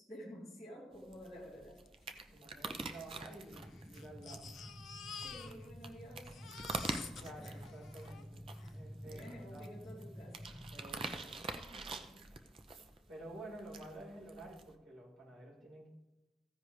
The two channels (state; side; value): normal; both; correlation 0.69